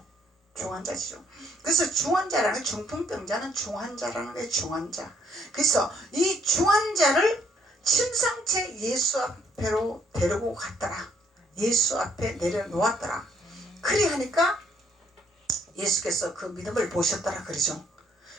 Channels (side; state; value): both; normal; correlation 0.67